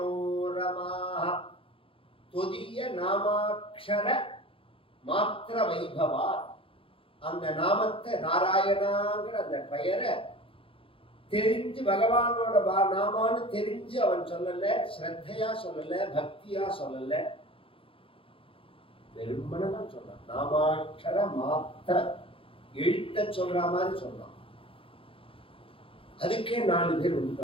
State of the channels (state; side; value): late; right; 0.26 ms